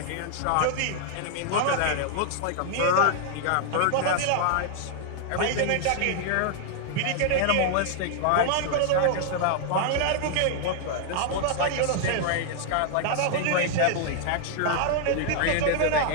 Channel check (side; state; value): both; different; correlation 0.00